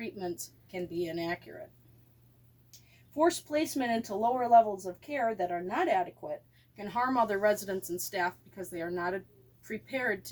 can be inaccurate. Forced placement into lower levels of care that are not adequate can harm other residents and staff because they are not prepared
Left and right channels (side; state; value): both; identical; correlation 1.00